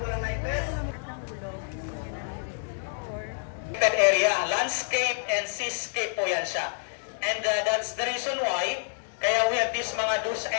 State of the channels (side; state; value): right; silent; digital silence